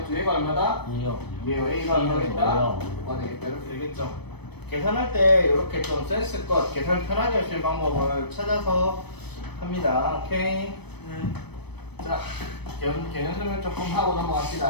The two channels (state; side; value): late; right; 0.97 ms